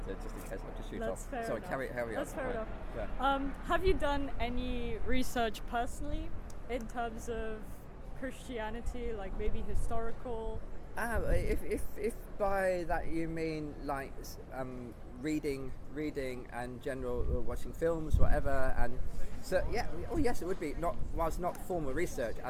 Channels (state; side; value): identical; both; correlation 1.00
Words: just in case I have to shoot That's off. fair Sorry, enough. carry on. That's fair enough. Yeah. Have you done any research personally in terms of Christianity, like maybe historical? If by that you mean like reading and general watching films, whatever. And so yes, it would be not formal research